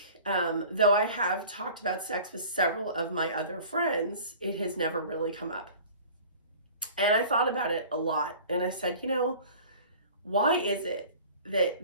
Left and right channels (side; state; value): both; inverted; correlation -0.44